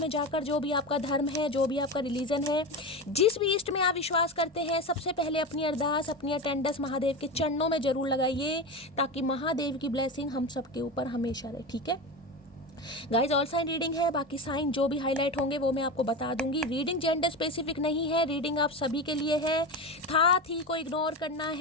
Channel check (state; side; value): normal; both; correlation 0.22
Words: में जाकर जो भी आपका धर्म है, जो भी आपका रिलीजन है, जिस भी इष्ट में आप विश्वास करते हैं, सबसे पहले अपनी अरदास, अपनी अटेंडेंस महादेव के चरणों में जरूर लगाइए, ताकि महादेव की ब्लेसिंग हम सबके ऊपर हमेशा रहे। ठीक है गाइज, ऑल साइन रीडिंग है, बाकी साइन जो भी हाईलाइट होंगे वो मैं आपको बता दूंगी। रीडिंग जेंडर स्पेसिफिक नहीं है, रीडिंग आप सभी के लिए है। साथ ही को इग्नोर करना